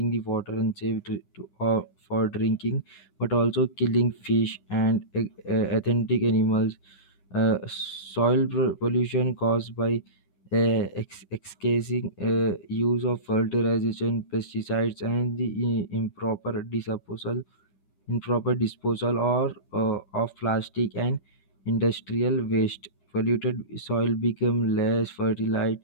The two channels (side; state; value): right; late; 10 ms